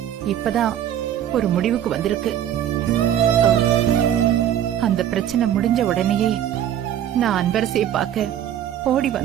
இப்பதான் ஒரு முடிவுக்கு வந்திருக்கு. அந்த பிரச்சனை முடிஞ்ச உடனேயே நான் அன்பரசியை பார்க்க ஓடி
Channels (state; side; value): quieter; left; 10.6 dB